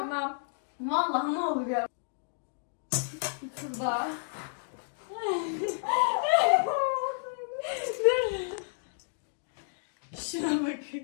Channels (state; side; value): silent; right; digital silence